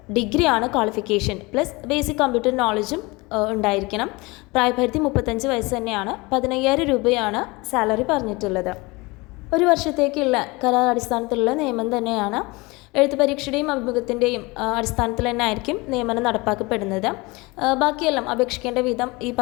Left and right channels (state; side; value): quieter; right; 24.2 dB